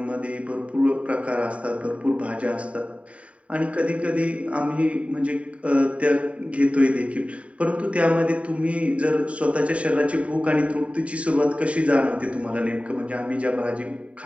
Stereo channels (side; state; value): left; late; 0.065 ms